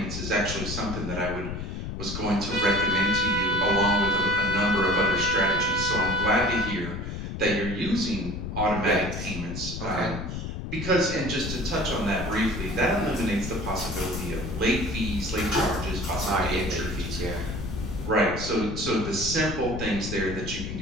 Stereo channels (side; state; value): left; noise; rumble, 6 dB below the sound